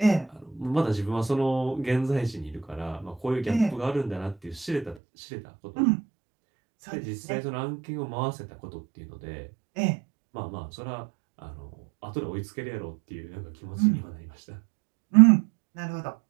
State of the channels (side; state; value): left; drops out; at 5.0 s